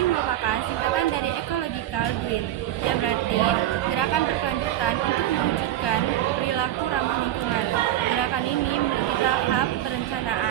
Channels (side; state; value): left; quieter; 13.0 dB